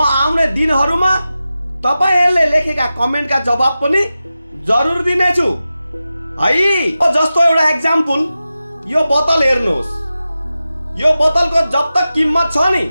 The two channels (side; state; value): both; inverted; correlation -0.93